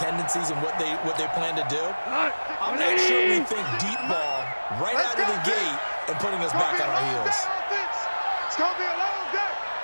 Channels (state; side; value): inverted; both; correlation -1.00